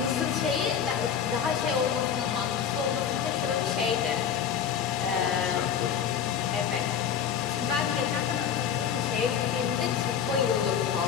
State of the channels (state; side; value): quieter; right; 8.0 dB